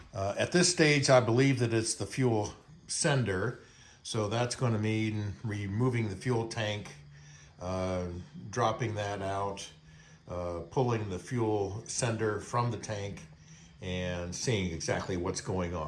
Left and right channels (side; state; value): both; identical; correlation 1.00